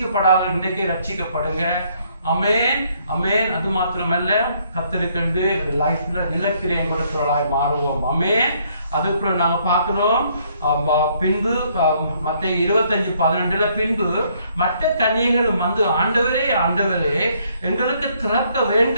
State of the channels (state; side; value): inverted; both; correlation -0.68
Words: இன்றைக்கே ரட்சிக்கப்படுங்க. அமேன் அமேன். அது மாத்திரமல்ல, கத்தருக்கு லைஃப்ல நிலக்கிரியம் கொடுக்கிறவர்களாய் மாறுவோம். அமேன். அதுக்கப்புறம் நாங்க பார்க்கிறோம் பின்பு மத்தேயு 25:12 பின்பு மற்ற கன்னிகைகளும் வந்து ஆண்டவரே ஆண்டவரே எங்களுக்கு திறக்க